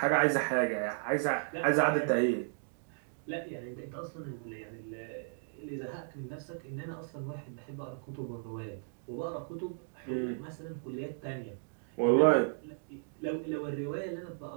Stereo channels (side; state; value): left; silent; digital silence